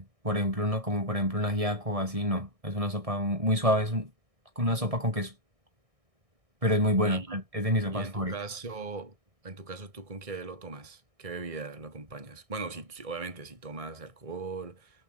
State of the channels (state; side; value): late; left; 1.6 ms